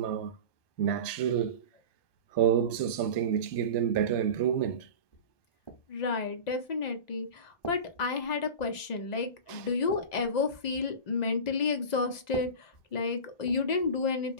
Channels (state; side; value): late; right; 1.9 ms